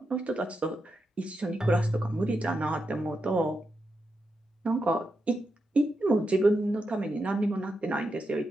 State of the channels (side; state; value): both; normal; correlation 0.86